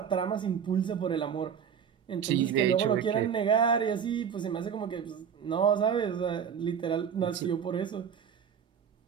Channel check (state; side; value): quieter; left; 7.7 dB